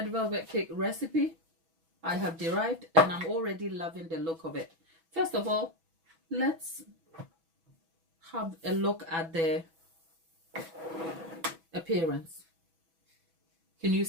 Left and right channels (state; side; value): late; left; 6.1 ms